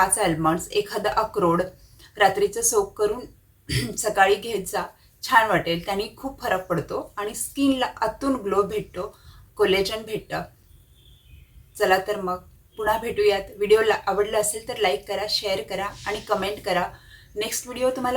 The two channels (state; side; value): identical; both; correlation 1.00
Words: आल्मंड्स, एखादा अक्रोड रात्रीचं सोक करून सकाळी घेत जा. छान वाटेल, त्याने खूप फरक पडतो आणि स्किनला आतून ग्लो भेटतो, कोलेजन भेटतं. चला तर मग पुन्हा भेटूयात. व्हिडिओला आवडला असेल तर लाईक करा, शेअर करा आणि कमेंट करा. नेक्स्ट व्हिडिओ